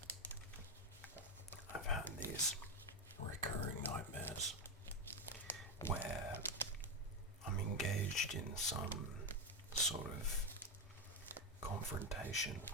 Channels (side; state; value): both; normal; correlation 0.09